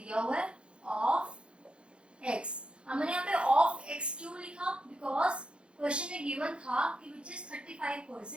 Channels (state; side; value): late; left; 0.057 ms